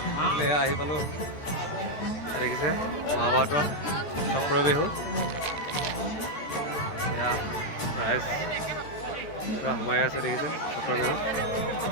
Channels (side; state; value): right; late; 13 ms